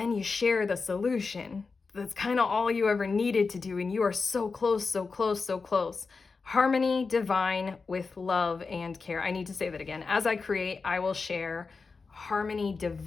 you share the solution. That's kind of all you ever needed to do. And you are so close, so close, so close. Harmony divine with love and care. I need to say that again. As I create, I will share. Harmony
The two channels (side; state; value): right; quieter; 4.5 dB